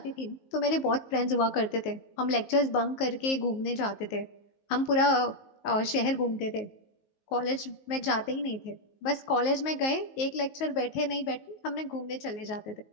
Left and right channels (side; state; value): right; late; 19 ms